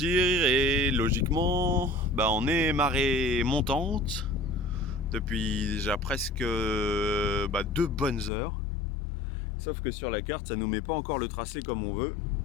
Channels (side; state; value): right; drops out; at 8.3 s